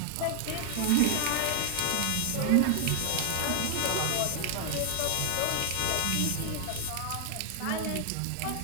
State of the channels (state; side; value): different; both; correlation 0.00